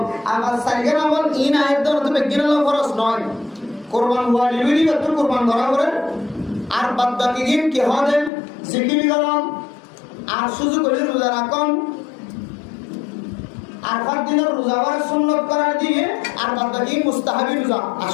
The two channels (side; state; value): right; drops out; at 8.3 s